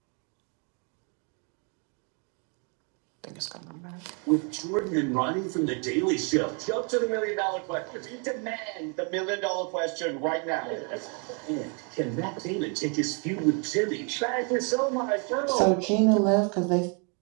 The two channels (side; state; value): left; quieter; 36.8 dB